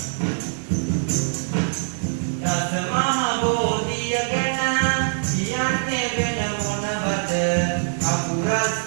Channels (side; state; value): left; silent; digital silence